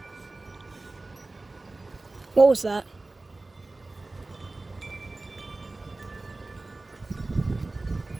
What was that?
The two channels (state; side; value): quieter; left; 3.2 dB